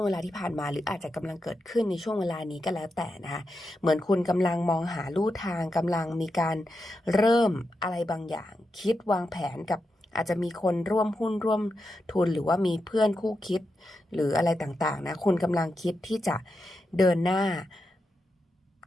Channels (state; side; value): normal; both; correlation 0.87